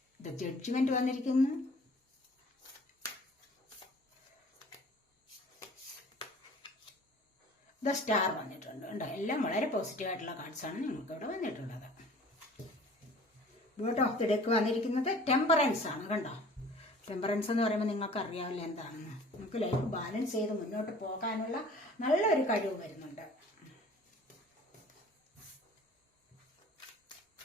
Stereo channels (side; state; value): both; normal; correlation 0.48